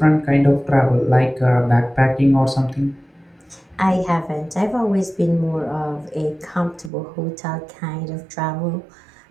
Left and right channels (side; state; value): left; drops out; at 6.9 s